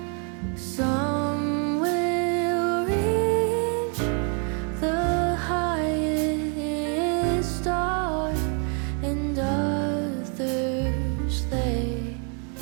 some will reach the highest star, and others they.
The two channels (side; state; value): left; quieter; 38.3 dB